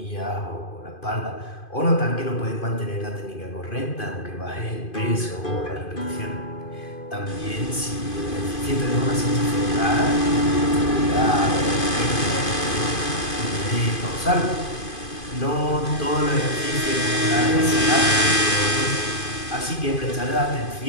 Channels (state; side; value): late; right; 2.5 ms